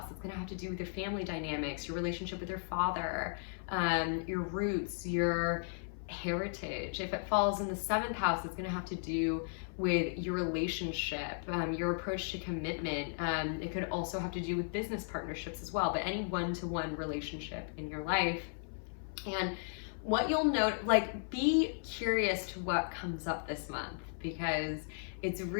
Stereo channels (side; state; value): right; silent; 54 dB below the other